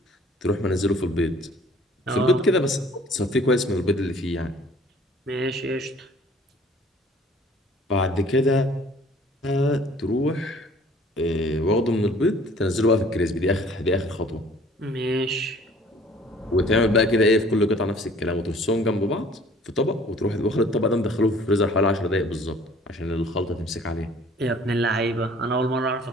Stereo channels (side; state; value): both; normal; correlation 0.53